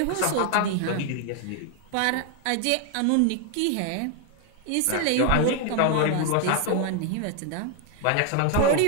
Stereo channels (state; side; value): different; both; correlation 0.01